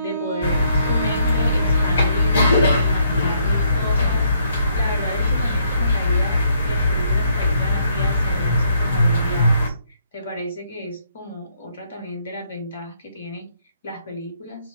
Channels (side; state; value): both; inverted; correlation -0.70